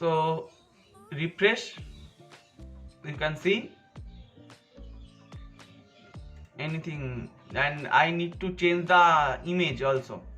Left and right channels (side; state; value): both; identical; correlation 1.00